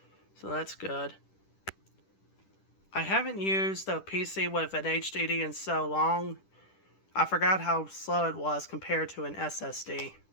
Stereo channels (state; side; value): late; right; 10 ms